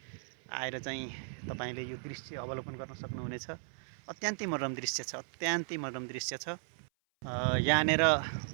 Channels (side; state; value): left; silent; 54 dB below the other